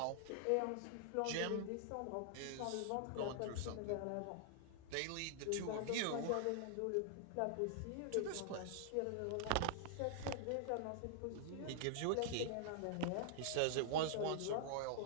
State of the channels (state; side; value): different; both; correlation 0.00